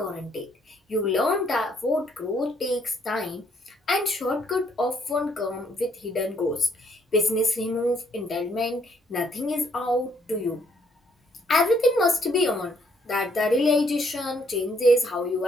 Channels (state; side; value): normal; both; correlation 0.69